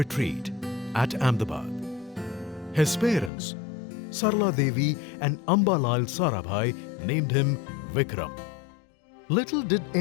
at Ahmedabad. His parents, Sarla Devi and Ambalal Sarabhai, named him Vikram. Little did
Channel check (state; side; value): drops out; right; at 3.3 s